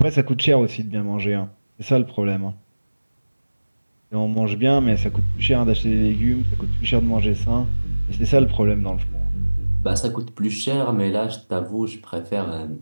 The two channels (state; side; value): inverted; both; correlation -1.00